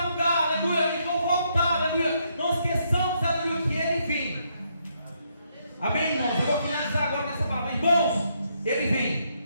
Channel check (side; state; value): both; inverted; correlation -0.75